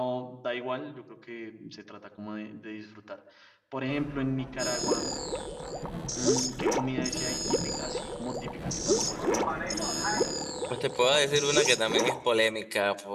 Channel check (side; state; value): both; identical; correlation 1.00